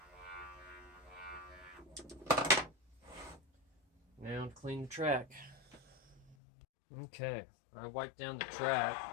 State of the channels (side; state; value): right; drops out; at 6.4 s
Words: Now to clean the track. Okay, I wiped down the